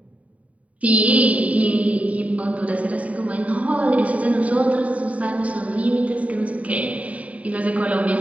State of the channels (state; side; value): late; left; 0.068 ms